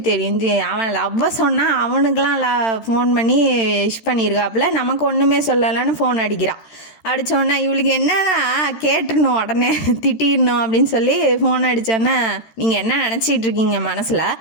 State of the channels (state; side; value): late; right; 13 ms